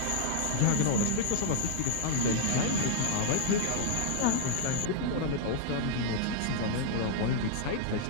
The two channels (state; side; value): different; both; correlation -0.01